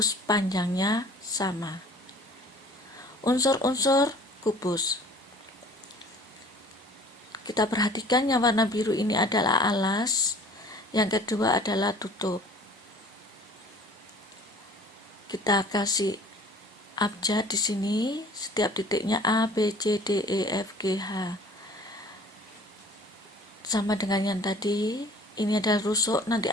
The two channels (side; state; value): both; normal; correlation 0.50